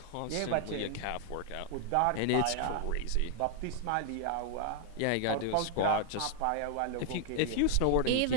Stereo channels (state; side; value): different; both; correlation 0.00